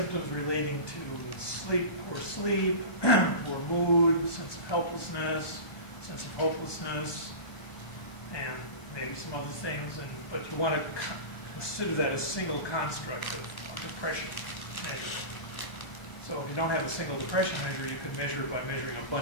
relating to sleep, poor mood, sense of helplessness, sense of hopelessness, and maybe some other things, but you want to consider that a single construct of depression measure. So if you don't have a single depression measure, you could measure it by measuring a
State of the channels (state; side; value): late; right; 1.2 ms